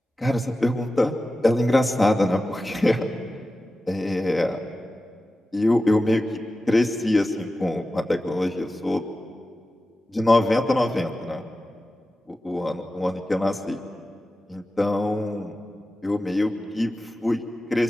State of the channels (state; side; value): normal; both; correlation 0.94